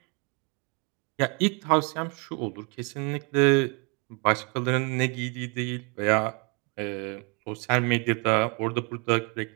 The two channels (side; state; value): left; quieter; 32.0 dB